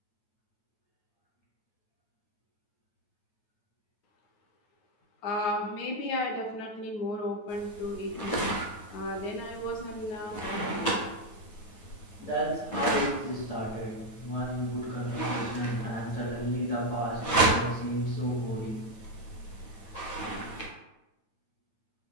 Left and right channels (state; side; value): late; right; 9.3 ms